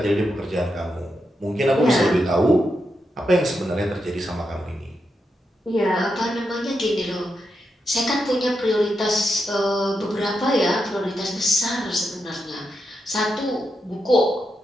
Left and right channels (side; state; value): both; normal; correlation 0.85